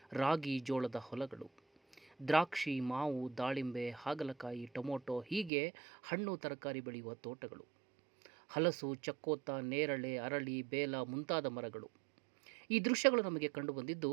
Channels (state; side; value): drops out; left; at 5.5 s